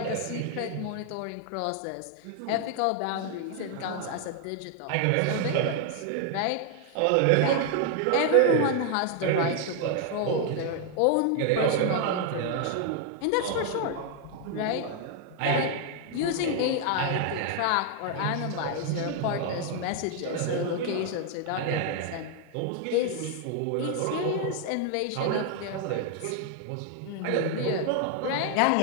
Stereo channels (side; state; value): both; different; correlation 0.00